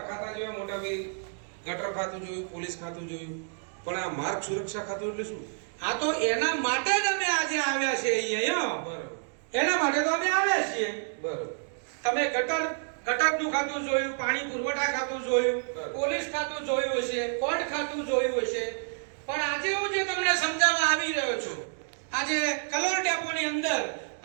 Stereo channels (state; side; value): silent; left; 59 dB below the other